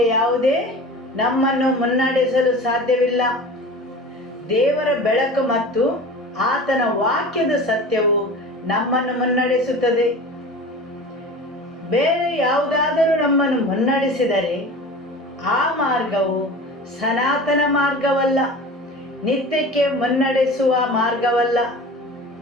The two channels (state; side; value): normal; both; correlation 0.36